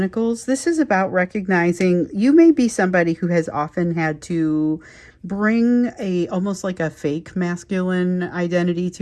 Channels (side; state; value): both; identical; correlation 1.00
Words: This is about recognizing you may be somebody who has often had to bring almost like a fake masculine identity